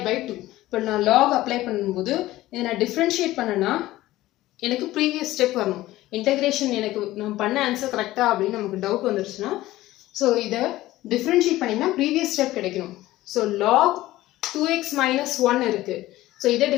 by 2. But now log apply பண்ணும்போது இதை நான் differentiate பண்ணனா எனக்கு previous step வரணும். Integration எனக்கு நான் பண்ண answer கரெக்ட்டா அப்படினு நமக்கு டவுட் வந்துருச்சுனா சோ இத differentiate பண்ணினா previous step கிடைக்கும். So log 2x minus 1 இருக்கு. So இத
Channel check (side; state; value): right; quieter; 16.4 dB